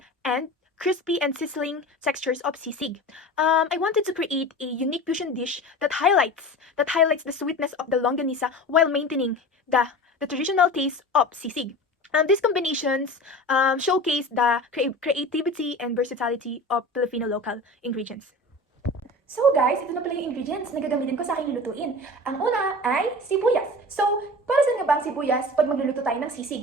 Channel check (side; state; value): both; normal; correlation 0.34